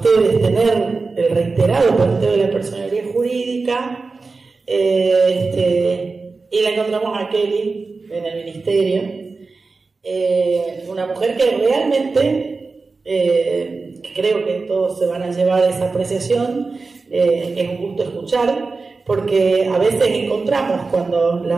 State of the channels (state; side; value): quieter; left; 4.0 dB